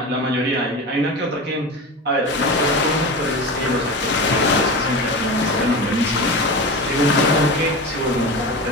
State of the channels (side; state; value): both; normal; correlation 0.27